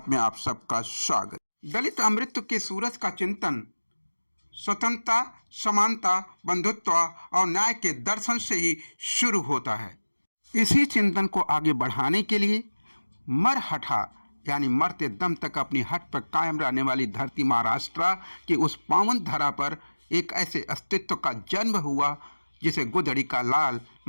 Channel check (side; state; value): both; inverted; correlation -1.00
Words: में आप सबका स्वागत। दलित अमृत के सूरज का चिंतन स्वतंत्रता, समानता, बंधुत्व और न्याय के दर्शन से ही शुरू होता है। इसी चिंतन को आगे बढ़ाने के लिए मरहठा यानी मरते दम तक अपनी हट पर कायम रहने वाली धरती महाराष्ट्र की उस पावन धरा पर एक ऐसे अस्तित्व का जन्म हुआ जिसे गोधड़ी का लाल